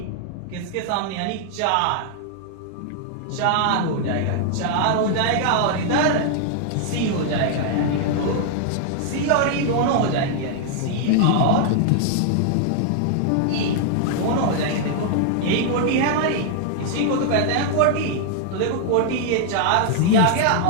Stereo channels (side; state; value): both; different; correlation 0.00